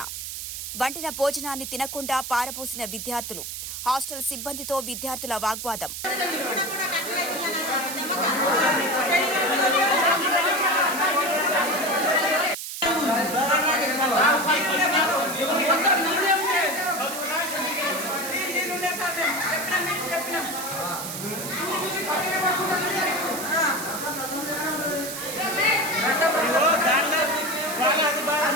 వండిన భోజనాన్ని తినకుండా పారబోసిన విద్యార్థులు. హాస్టల్ సిబ్బందితో విద్యార్థుల వాగ్వాదం.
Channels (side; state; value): right; noise; hiss, 7 dB below the sound